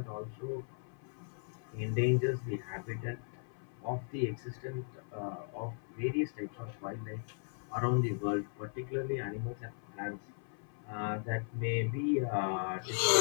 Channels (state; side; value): silent; right; 53 dB below the other